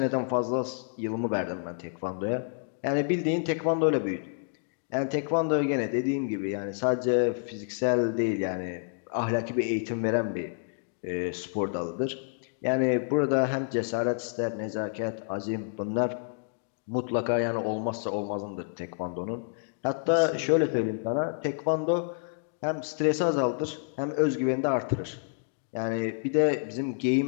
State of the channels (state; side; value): silent; right; digital silence